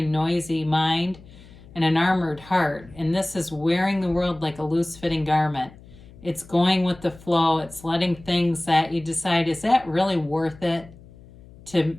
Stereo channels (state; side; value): noise; left; hum, 21 dB below the sound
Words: noisy mind and an armored heart. And this is wearing the world like a loose fitting garment. It's going with the flow. It's letting things that you decide, is that really worth it